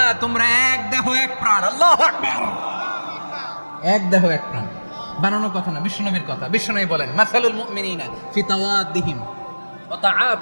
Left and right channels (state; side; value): inverted; both; correlation -1.00